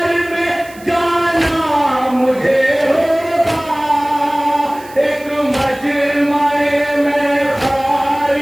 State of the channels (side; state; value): right; noise; hiss, 22 dB below the sound